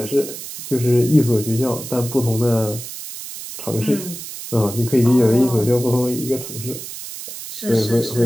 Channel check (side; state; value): right; noise; hiss, 10 dB below the sound